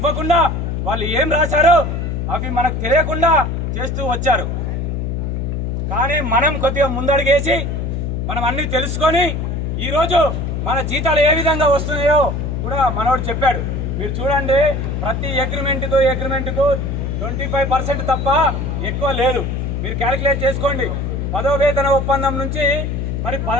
వాళ్ళు ఏం రాశారో అవి మనకు తెలియకుండా చేస్తూ వచ్చారు. కానీ మనం కొద్దిగా ముందడుగేసి మనం అన్నీ తెలుసుకొని ఈరోజు మన జీతాలు ఏ విధంగా వస్తున్నాయో కూడా మనోడు చెప్పాడు. మీరు చూడండి, ప్రతి అగ్రిమెంట్కు 25% తప్ప ఎక్కువ లేదు. మీరు క్యాలిక్యులేట్ చేసుకోండి. 10వ వేతన ఒప్పందం నుంచి మరి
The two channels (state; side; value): noise; left; hum, 2 dB below the sound